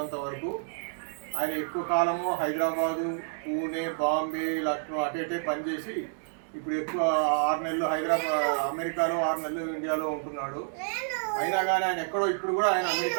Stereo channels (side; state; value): left; silent; digital silence